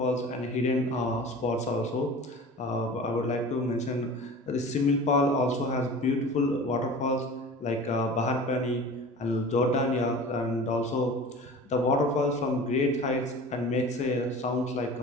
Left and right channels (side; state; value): both; normal; correlation 0.38